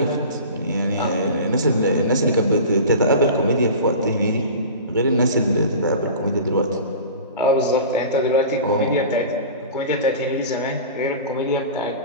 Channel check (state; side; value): inverted; both; correlation -0.36